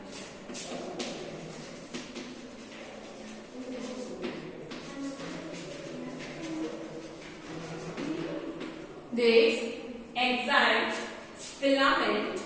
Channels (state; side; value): identical; both; correlation 1.00